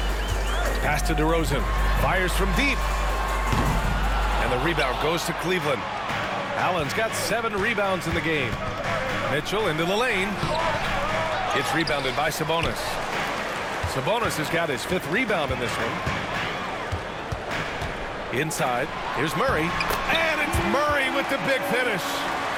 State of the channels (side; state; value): both; identical; correlation 1.00